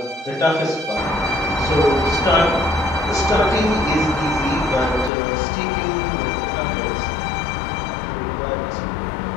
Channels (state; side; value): drops out; right; at 5.1 s